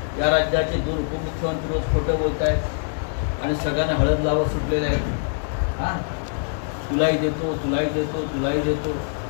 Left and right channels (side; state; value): right; silent; digital silence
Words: या राज्याचे 2 उपमुख्यमंत्री रोज खोटं बोलत आहेत आणि सगळ्यांना हळद लावत सुटलेले आहेत. हां, तुलाही देतो, तुलाही देतो, तुलाही देतो.